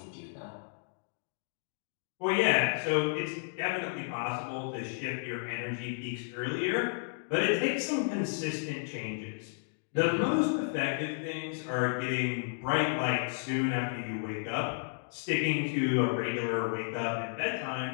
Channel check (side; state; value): right; silent; digital silence